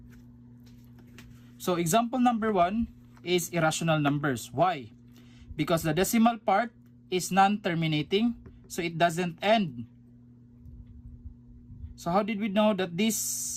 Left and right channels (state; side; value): identical; both; correlation 1.00